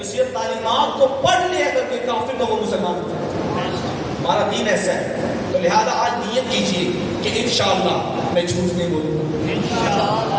صرف تعلیمات کو پڑھ لے اگر کوئی کافر تو وہ مسلمان ہو جائے۔ ہمارا دین ایسا ہے، تو لہذا آج نیت کیجیے کہ انشاءاللہ میں جھوٹ نہیں بولوں گا،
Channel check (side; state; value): both; identical; correlation 1.00